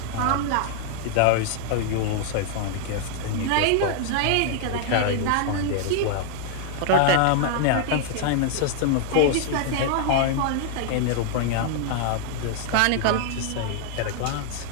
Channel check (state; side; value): different; both; correlation 0.00